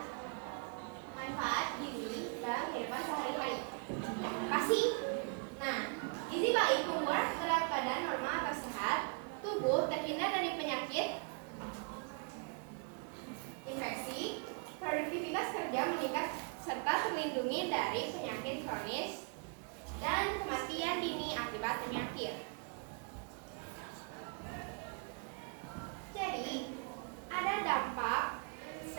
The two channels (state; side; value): quieter; left; 37.6 dB